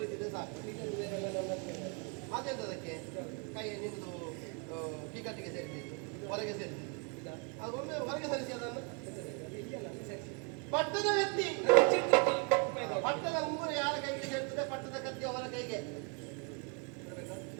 ಸಾಕು ಅದೆಂತದಕ್ಕೆ ಕೈ ನಿಮ್ದು ಟಿಕೆಟ್ಗೆ ಸೇರಿಸಿದ್ದು ಹೊರಗೆ ಸೇರಿಸಿದ್ದು ಅದೊಮ್ಮೆ ಹೊರಗೆ ಸರಿಸಿ ಅದನ್ನು ಪಟ್ಟದ ವ್ಯಕ್ತಿ ಪಟ್ಟದ ಮುಂಗುರು ಯಾರ ಕೈಗೆ ಸೇರ್ತದೆ ಪಟ್ಟದ ಕತ್ತಿ ಅವರ ಕೈಗೆ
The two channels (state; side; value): quieter; left; 35.3 dB